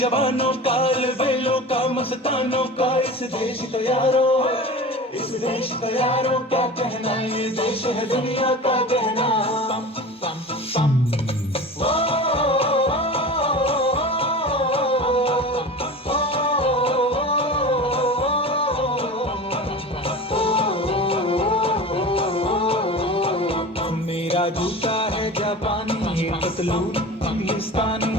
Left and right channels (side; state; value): both; normal; correlation 0.34